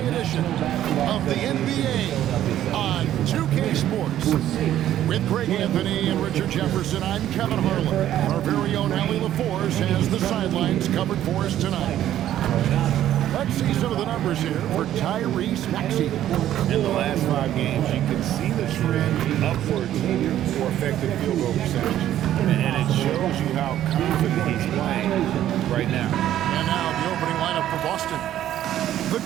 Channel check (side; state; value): left; quieter; 12.1 dB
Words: edition of the NBA on 2K Sports. With Greg Anthony and Richard Jefferson, I'm Kevin Harlan. Our very own Allie LaForce has the sidelines covered for us tonight. Let's see some of the numbers here for Tyrese Maxey. In the last 5 games, you can see the trend upwards for effective field goal percentage. And it shows you how confident he's playing right now. And now the opening lineup for Boston. The